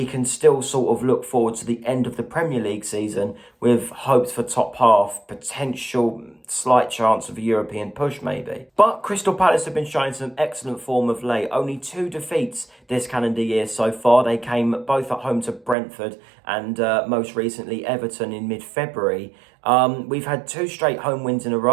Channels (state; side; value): drops out; left; at 15.8 s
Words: can still sort of look forward to the end of the Premier League season with hopes for top half, potential slight chance of a European push maybe. But Crystal Palace have been showing some excellent form of late. Only 2 defeats this calendar year so far. They came both at home to Brentford and most recently Everton in mid-February. We've had 2 straight home wins in a